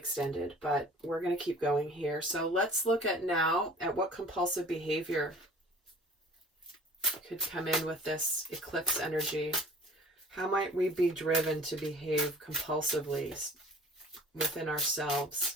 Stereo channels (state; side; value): normal; both; correlation 0.47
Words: but we're going to keep going here. So let's look at now at what compulsive behavior could come in with this eclipse energy. How might we be driven to behave compulsively within ourselves